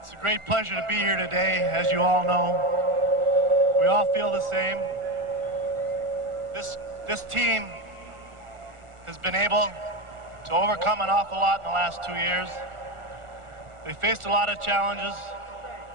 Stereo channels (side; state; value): left; late; 1.4 ms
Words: a great pleasure to be here today, as you all know. We all feel the same. This team has been able to overcome an awful lot in the last 2 years. They faced a lot of challenges,